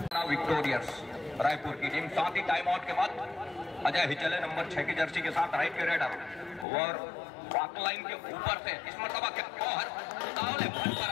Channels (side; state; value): right; drops out; at 6.7 s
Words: विक्टोरियर्स रायपुर की टीम। साथ ही टाइम आउट के बाद अजय ही चले नंबर 6 की जर्सी के साथ राइट के रेडर और वॉक लाइन के ऊपर से इस मर्तबा क्या कौहर उतावले भर